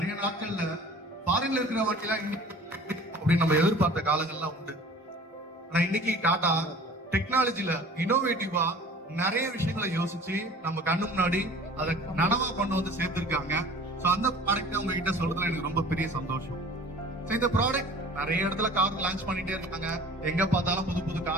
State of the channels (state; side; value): normal; both; correlation 0.45